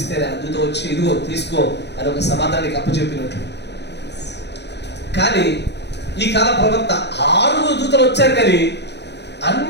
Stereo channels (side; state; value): right; late; 0.50 ms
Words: ఆ దూత వచ్చి ఇదిగో తీసుకో అని ఒక సమాధానానికి అప్పచెప్పినట్లు. కానీ ఈ కాల ప్రవక్త 6 దూతలు వచ్చారు, కానీ